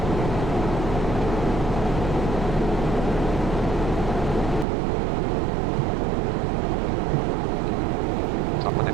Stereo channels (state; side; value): drops out; left; at 4.7 s